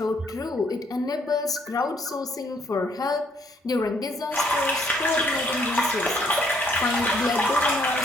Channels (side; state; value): both; normal; correlation 0.67